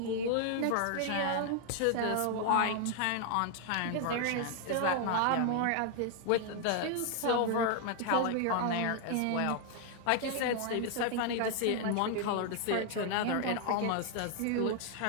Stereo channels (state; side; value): different; both; correlation 0.00